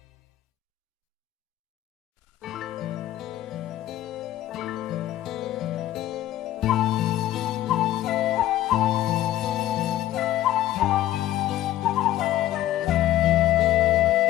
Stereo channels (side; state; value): right; quieter; 13.8 dB